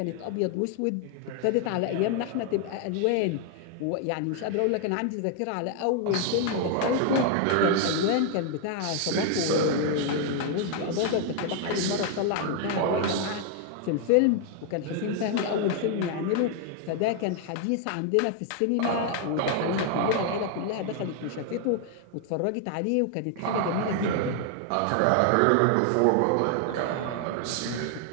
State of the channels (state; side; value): different; both; correlation 0.00